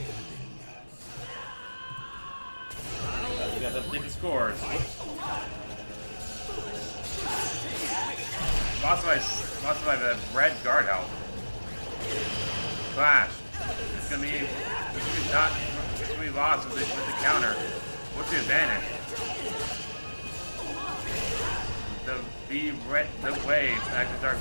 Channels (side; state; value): both; inverted; correlation -1.00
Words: We got to update the scores. Lots of my red guard health. Flash. It's gonna be lost with the counter. What's the advantage? The wave, active dark